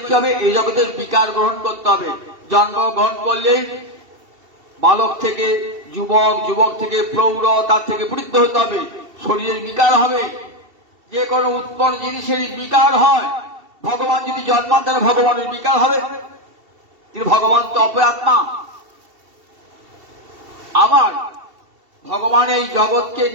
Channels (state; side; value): late; left; 2.7 ms